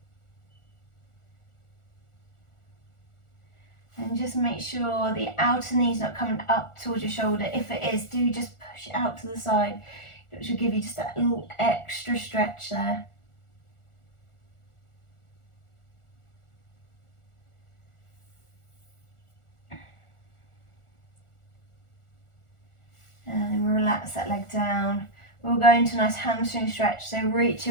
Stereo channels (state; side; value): late; right; 1.4 ms